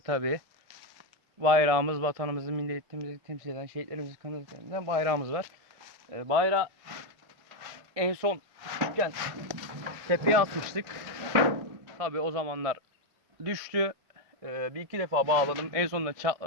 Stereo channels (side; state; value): left; late; 1.7 ms